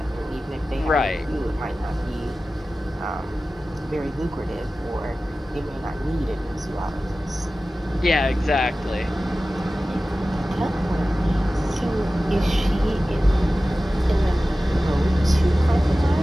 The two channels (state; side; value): normal; both; correlation 0.95